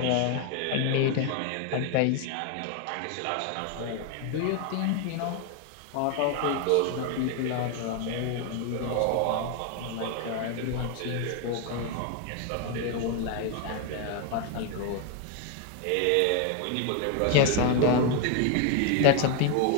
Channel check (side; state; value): both; different; correlation 0.01